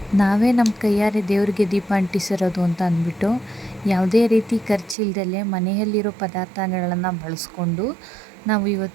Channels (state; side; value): drops out; left; at 5.0 s